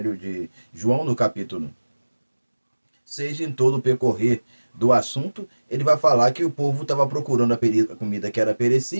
de João, no capítulo 6, em todo o percorrer do assunto, ele vai falar que o povo estava procurando a comida que era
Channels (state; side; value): inverted; both; correlation -1.00